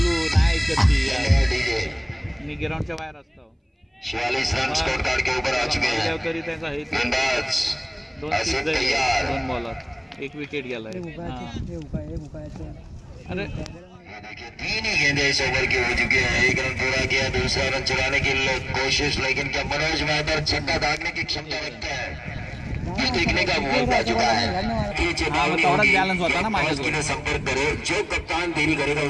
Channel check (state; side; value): identical; both; correlation 1.00